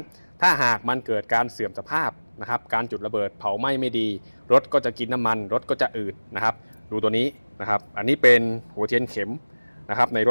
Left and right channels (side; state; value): both; inverted; correlation -1.00